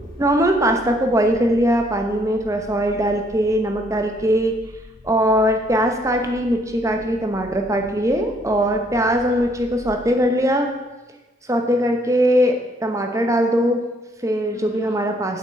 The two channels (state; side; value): normal; both; correlation 0.66